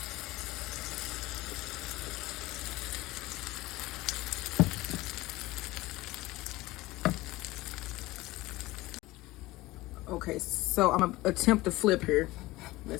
Okay, so I'm gonna attempt to flip here.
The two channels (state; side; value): quieter; right; 19.2 dB